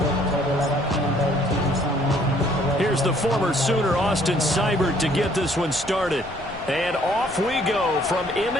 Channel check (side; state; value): left; noise; rumble, 18 dB below the sound